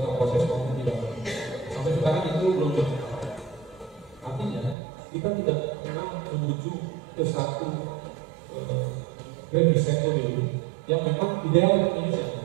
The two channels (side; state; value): left; drops out; at 4.8 s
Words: proses maupun tidak. Sampai sekarang itu belum berjalan. Artinya kita tidak pernah menuju ke satu grand design pemilu yang memang ideal untuk Indonesia.